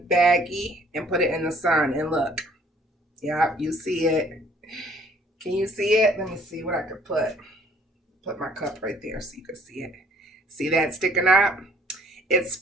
baggie, and put it in the sun. And look, yeah, you see it. Can you see it? Let me see what I could put. Put my cup right there so you can see it. See that sticking up? It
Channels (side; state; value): both; normal; correlation 0.58